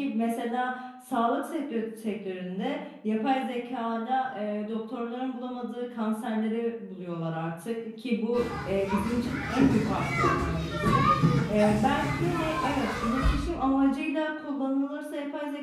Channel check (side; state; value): both; identical; correlation 1.00